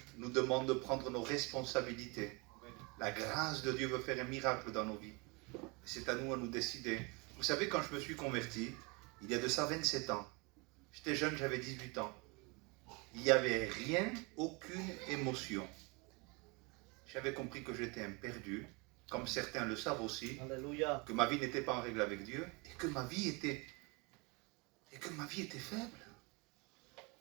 nous demande de prendre nos responsabilités. La grâce de Dieu veut faire un miracle dans nos vies. C'est à nous décider. Vous savez, quand je me suis converti, il y a de ça 27 ans, j'étais jeune, j'avais 18 ans. Il n'y avait rien, aucune émotion. J'avais compris que j'étais un perdu, comme certains le savent aussi. Alléluia. Que ma vie n'était pas en règle avec Dieu, et que ma vie était faible.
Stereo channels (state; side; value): quieter; left; 28.1 dB